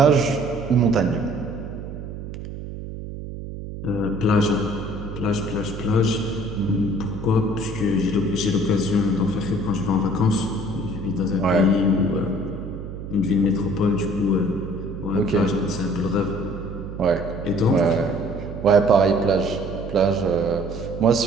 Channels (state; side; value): noise; right; hum, 9 dB below the sound